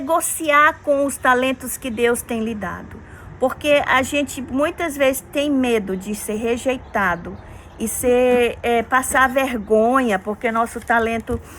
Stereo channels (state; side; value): identical; both; correlation 1.00